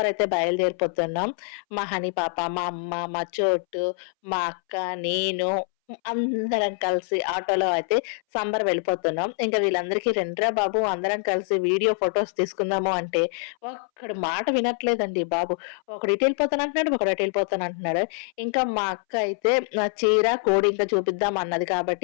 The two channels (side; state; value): right; silent; 61 dB below the other